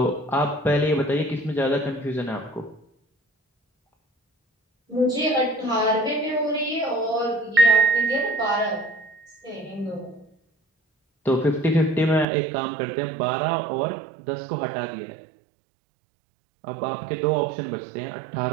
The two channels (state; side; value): drops out; left; at 12.2 s